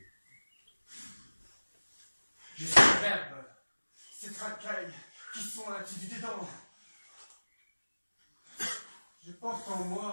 Je suis le verbe, ces racailles qui sont du dedans. Je porte en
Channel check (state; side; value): inverted; both; correlation -1.00